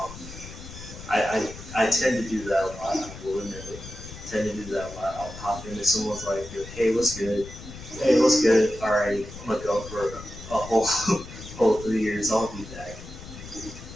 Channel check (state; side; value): noise; left; rumble, 13 dB below the sound